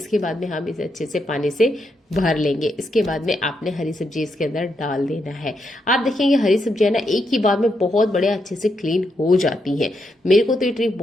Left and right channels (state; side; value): normal; both; correlation 0.81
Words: बाद में हम इसे अच्छे से पानी से भर लेंगे। इसके बाद में आपने हरी सब्जी इसके अंदर डाल देना है। आप देखेंगे हरी सब्जियां ना एक ही बार में बहुत बड़े अच्छे से क्लीन हो जाती हैं। मेरे को तो ये ट्रिक